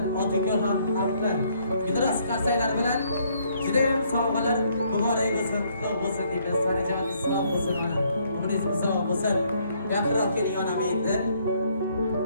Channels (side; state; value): both; inverted; correlation -0.68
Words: otinglar ham haqlar. Gidros qarsaylar bilan juda ham sovg'alar muborak bo'lsin, qutlug' bo'lsin deymiz. Sanajoningiz sog' bo'lsin ona. Umringiz uzoq bo'lsin. Yaqinroq keling onam endi.